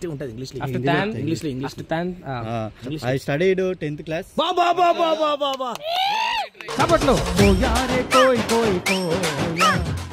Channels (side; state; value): both; identical; correlation 1.00